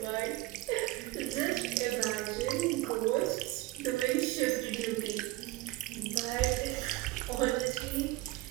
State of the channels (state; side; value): quieter; left; 17.9 dB